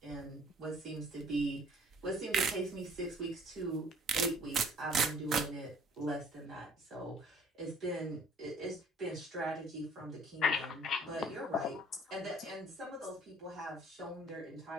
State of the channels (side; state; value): both; normal; correlation 0.54